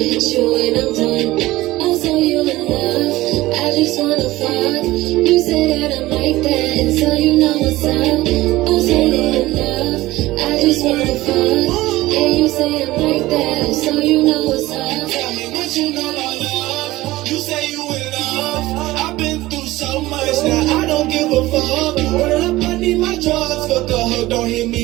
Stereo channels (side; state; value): left; quieter; 17.9 dB